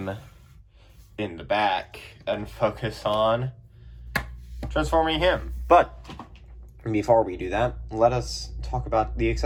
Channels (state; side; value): identical; both; correlation 1.00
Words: in the back and focus on transforming him. But before we do that, let us talk about the